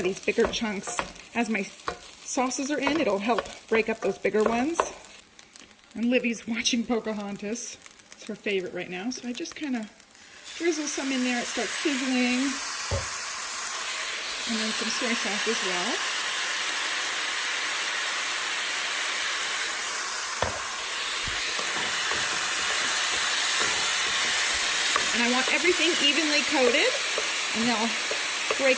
these bigger chunks. As my sauces are in, it'll help break up those bigger ones. And Livy's watching Pocahontas. It's her favorite right now. So I just kind of drizzle some in there. It starts sizzling. And then some soy sauce as well. And I want everything evenly coated, and they'll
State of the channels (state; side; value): identical; both; correlation 1.00